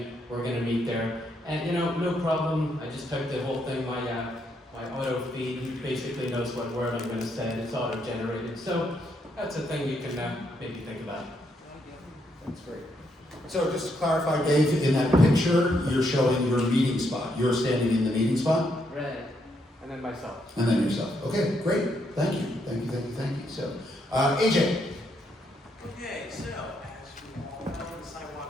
we're going to meet there. And you know, no problem. I just typed the whole thing. My auto feed, he basically knows what word I'm going to send. It's auto-generated. So that's a thing you can maybe think about. That's great. So just to clarify, Dave, in that picture, you're showing your meeting spot. You're standing in the meeting spot? Right. And then myself. And then yourself. Okay, great. Thank you. Thank you, thank you, thank you. So, AJ. Okay, so as we all know, the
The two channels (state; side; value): normal; both; correlation 0.76